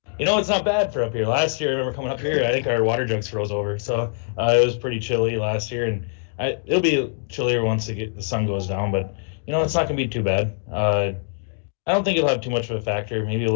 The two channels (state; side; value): silent; right; digital silence